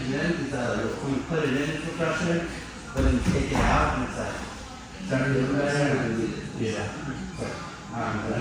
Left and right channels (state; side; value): identical; both; correlation 1.00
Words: then is that like, when you put it in for pressure, but then you take it out and it's like, starting to do better. Yeah. I